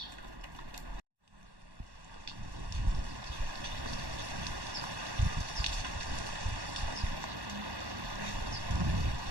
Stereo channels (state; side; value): late; left; 1.1 ms